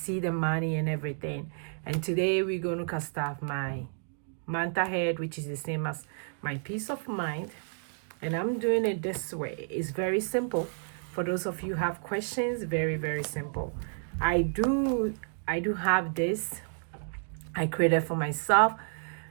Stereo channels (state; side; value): silent; left; digital silence